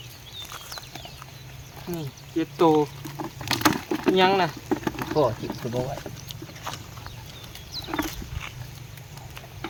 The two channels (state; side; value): identical; both; correlation 1.00